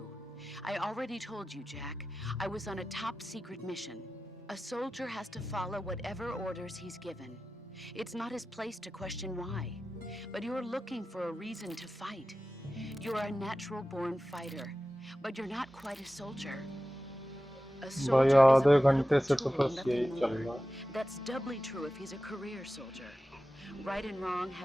I already told you, Jack. I was on a top-secret mission. A soldier has to follow whatever orders he's given. It's not his place to question why. But you're looking for a reason to fight. You're a natural-born fighter, but you're not quite a soldier. A भाई soldier is आधे a घंटे से political तो tool, बस यही nothing चल more. रहा है। That's doubly true if he's a career soldier. Right and wrong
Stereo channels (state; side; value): normal; both; correlation 0.94